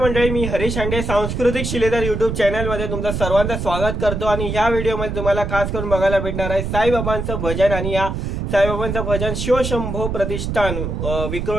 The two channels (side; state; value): right; noise; rumble, 3 dB below the sound